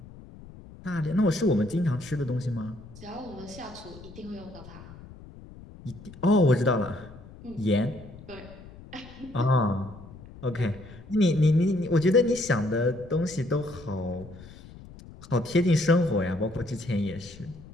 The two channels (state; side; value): noise; left; rumble, 18 dB below the sound